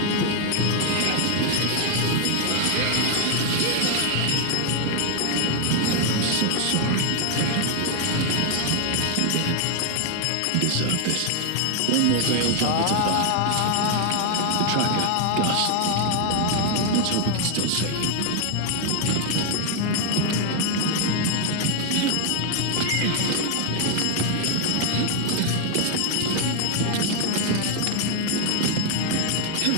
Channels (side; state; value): both; different; correlation 0.01